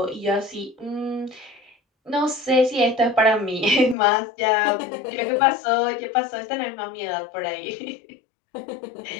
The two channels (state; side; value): drops out; right; at 4.0 s